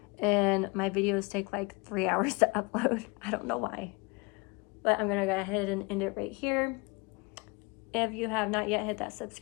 and my videos take like 3 hours to upload. I don't know why, but I'm gonna go ahead and end it right here. If you have not yet hit that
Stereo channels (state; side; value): quieter; right; 28.3 dB